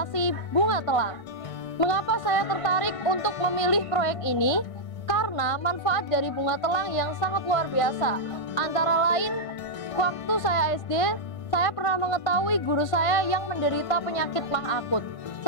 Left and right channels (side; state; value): right; late; 1.5 ms